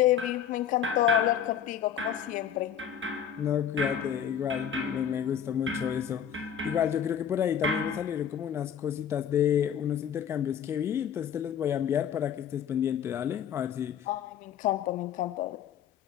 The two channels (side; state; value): right; quieter; 8.6 dB